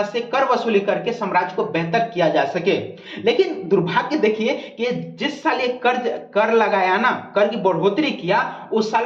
से कर वसूली करके साम्राज्य को बेहतर किया जा सके। लेकिन दुर्भाग्य देखिए कि जिस साल ये कर लगाया ना, कर की बढ़ोतरी किया, उस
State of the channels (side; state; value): both; identical; correlation 1.00